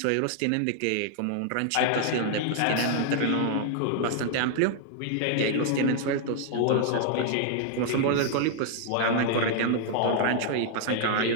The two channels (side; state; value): both; different; correlation 0.00